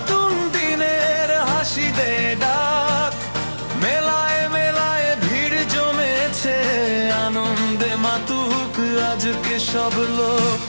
দিনের হাসি দে ডাক, মেলায় মেলায় ভিড় জমেছে, আনন্দে মাতুক আজকে সব লোক।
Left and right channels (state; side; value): inverted; both; correlation -1.00